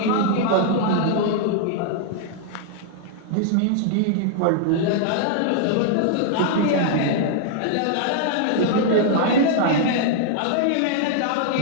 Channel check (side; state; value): both; different; correlation -0.01